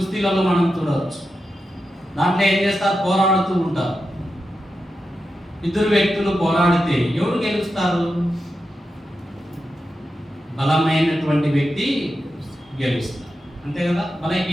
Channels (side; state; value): both; normal; correlation 0.89